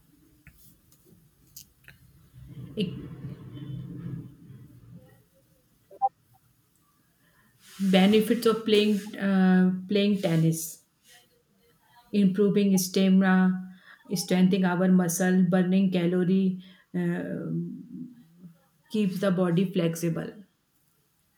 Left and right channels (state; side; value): identical; both; correlation 1.00